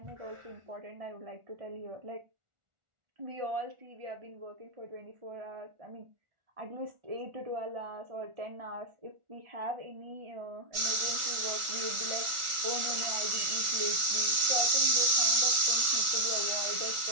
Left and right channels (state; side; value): late; left; 1.4 ms